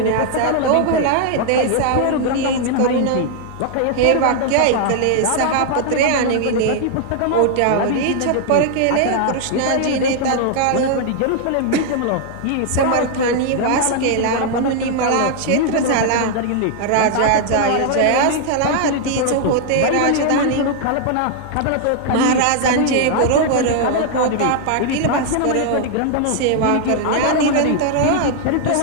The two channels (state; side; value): different; both; correlation 0.00